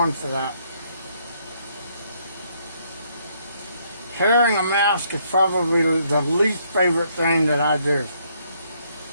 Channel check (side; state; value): both; inverted; correlation -0.70